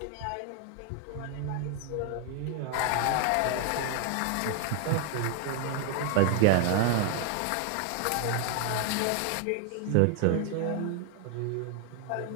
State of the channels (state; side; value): different; both; correlation 0.00